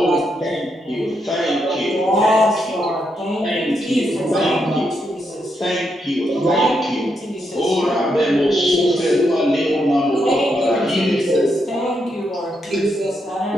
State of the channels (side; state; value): both; normal; correlation 0.81